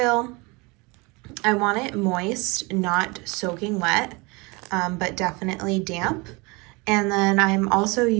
I want it moist, not soaking wet, but definitely damp. And then I'm also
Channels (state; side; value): quieter; left; 26.6 dB